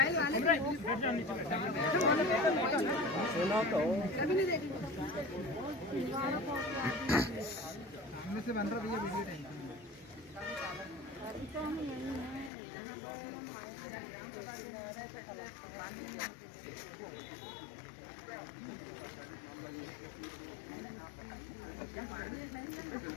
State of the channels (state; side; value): drops out; right; at 12.5 s